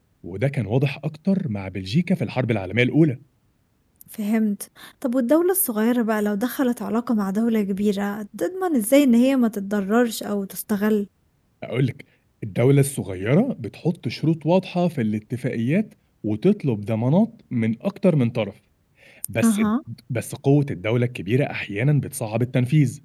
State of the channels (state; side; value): identical; both; correlation 1.00